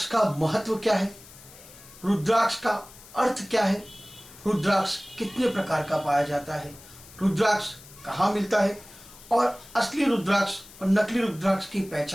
का महत्व क्या है, रुद्राक्ष का अर्थ क्या है, रुद्राक्ष कितने प्रकार का पाया जाता है, रुद्राक्ष कहाँ मिलता है और असली रुद्राक्ष और नकली रुद्राक्ष की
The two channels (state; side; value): noise; left; hiss, 20 dB below the sound